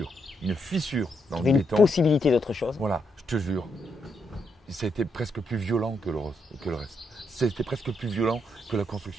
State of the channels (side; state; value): both; normal; correlation 0.79